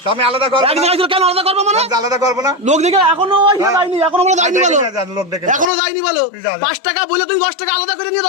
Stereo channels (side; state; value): right; drops out; at 5.7 s